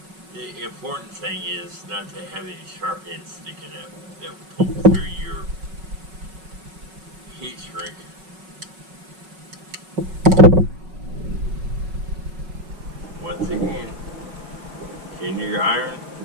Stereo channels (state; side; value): late; left; 5.4 ms